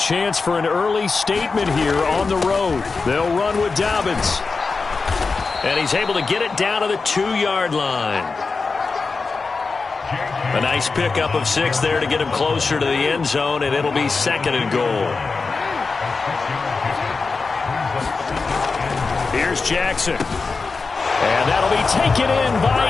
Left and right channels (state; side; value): quieter; right; 4.3 dB